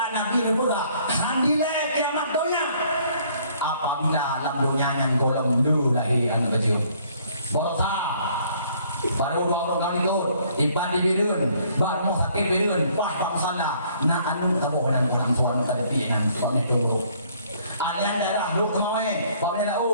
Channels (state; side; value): inverted; both; correlation -0.62